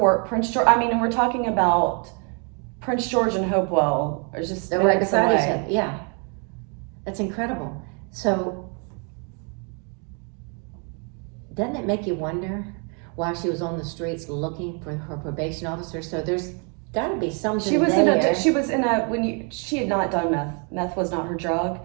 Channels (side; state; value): left; quieter; 37.4 dB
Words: Prince George. I mean, and we're talking about Prince George and Hopewell are just They're right minutes beside each away. other. Yeah, that's incredible. So, doesn't it make you wonder why she was on the streets looking for her probation officer? So there's got to be something She was there. she had not done meth. Meth was not her drug,